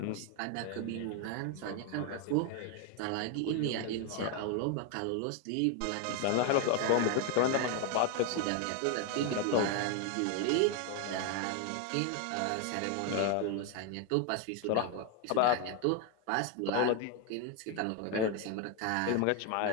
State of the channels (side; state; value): both; different; correlation 0.01